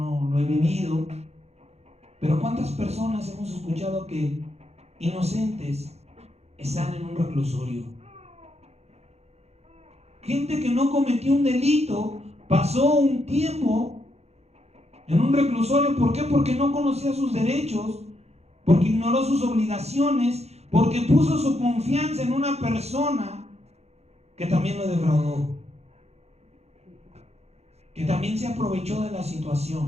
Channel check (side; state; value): left; late; 0.31 ms